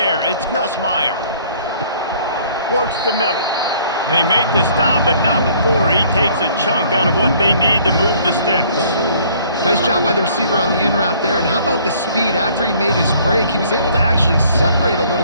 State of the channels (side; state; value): both; inverted; correlation -0.58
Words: it's Nussmeier. Works the middle. They make the stop, but not before he takes a chunk out of what they need to move the sticks. Nice job by the receiver on the in route there. And how about the speed? After he made his break, he was able to actually separate a